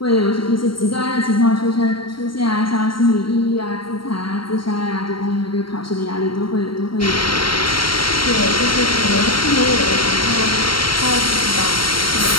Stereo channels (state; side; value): late; right; 0.73 ms